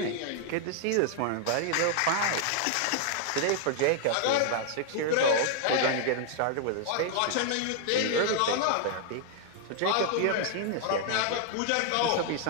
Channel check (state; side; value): different; both; correlation 0.00